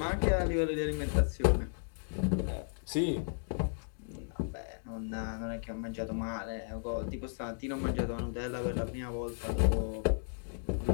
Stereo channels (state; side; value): silent; right; digital silence